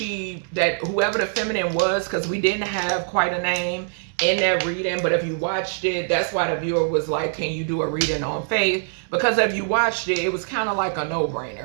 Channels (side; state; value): left; silent; digital silence